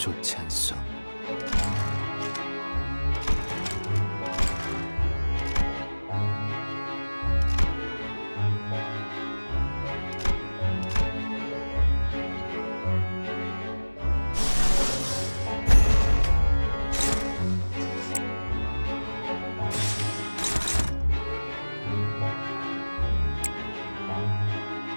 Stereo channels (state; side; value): inverted; both; correlation -1.00